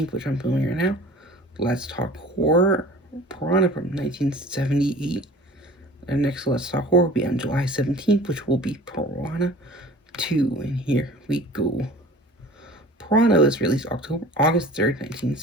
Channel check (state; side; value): normal; both; correlation 0.43